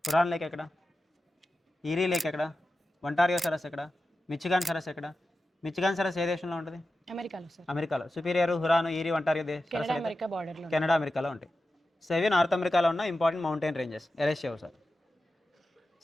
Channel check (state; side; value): normal; both; correlation 0.92